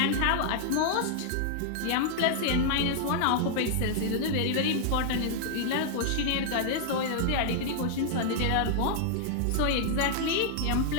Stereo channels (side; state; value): both; different; correlation -0.01